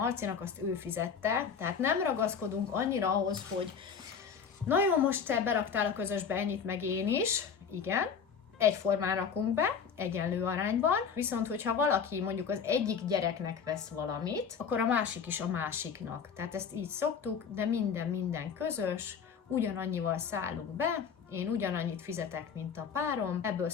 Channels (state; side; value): quieter; right; 6.6 dB